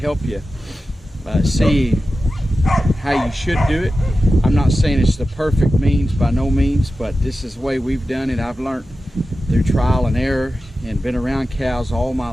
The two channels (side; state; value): both; normal; correlation 0.93